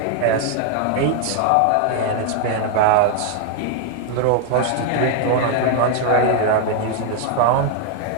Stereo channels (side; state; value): both; different; correlation 0.00